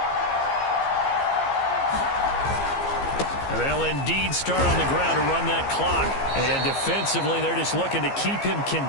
They'll indeed start on the ground to run that clock. And defensively, they're just looking to keep him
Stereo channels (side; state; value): right; late; 15 ms